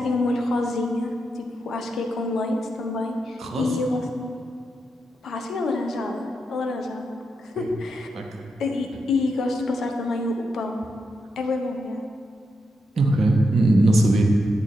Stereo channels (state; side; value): normal; both; correlation 0.85